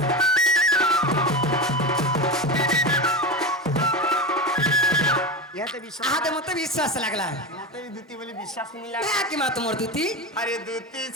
ইহাতে বিশ্বাস আহাতে মতে বিশ্বাস লাগলা ইহাতে দূতি বলি বিশ্বাস মিলা কি মা তোমার দুতি আরে দূতি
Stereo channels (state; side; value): normal; both; correlation 0.20